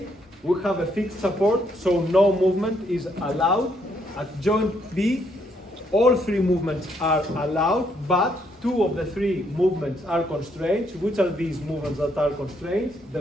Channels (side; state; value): both; normal; correlation 0.72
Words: we have a fixed support, so no movement is allowed. At joint B, all 3 movements are allowed, but 2 of the 3 movements are constraints. Which are these movements that are constraints?